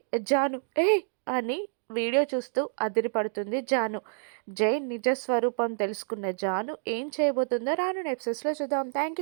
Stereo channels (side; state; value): left; silent; digital silence